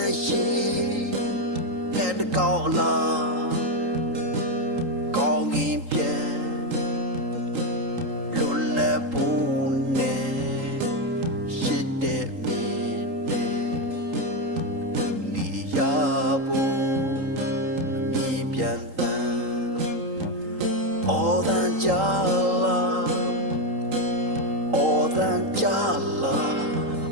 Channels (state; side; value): late; left; 3.8 ms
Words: ်ရင်တဲ့ကောင်းလားကောင်းရင်ပြန်လွတ်လပ်ဖို့နဲ့ရှိတဲ့မင်းနဲ့ဒုနီယာဖို့မြင်ပြန်တန်အော်တန်ကြလားအော်တန်ကြလား